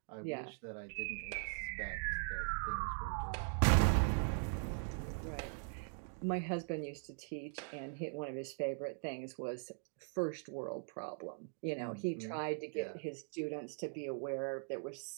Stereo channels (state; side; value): silent; left; 51 dB below the other